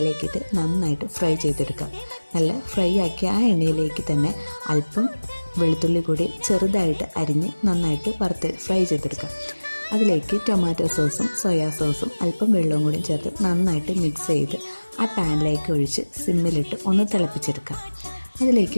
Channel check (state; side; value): inverted; both; correlation -1.00